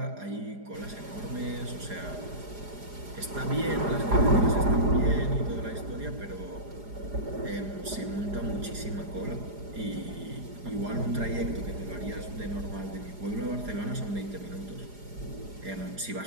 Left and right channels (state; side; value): late; left; 4.9 ms